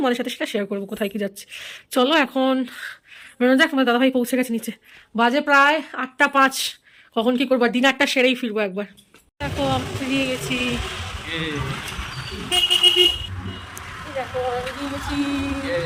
সাথে সেটা শেয়ার করবো কোথায় কি যাচ্ছে। চলো এখন বেরোনো যাক। তোমার দাদাভাই পৌঁছে গেছে নিচে, বাজে প্রায় 8:05। কখন কি করবো, ডিনারটা সেরেই ফিরবো একবার। দেখো আমি বেরিয়ে গেছি, দেখো বেরিয়ে গেছি।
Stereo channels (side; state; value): both; identical; correlation 1.00